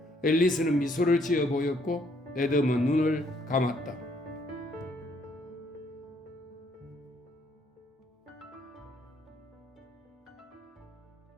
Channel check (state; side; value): normal; both; correlation 0.68